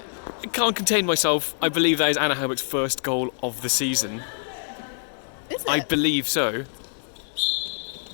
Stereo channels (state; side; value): silent; right; 62 dB below the other